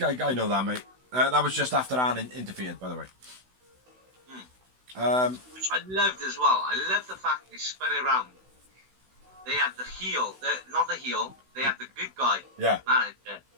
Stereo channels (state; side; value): late; left; 16 ms